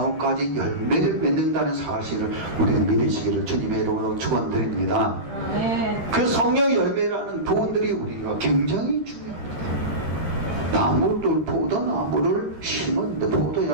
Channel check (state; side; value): late; left; 13 ms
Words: 열매를 맺는다는 사실을 우리는 믿으시기를 주님의 이름으로 축원드립니다. 그 성령의 열매라는 부분들이 우리가 굉장히 중요합니다. 나무들, 포도나무를 심었는데 포도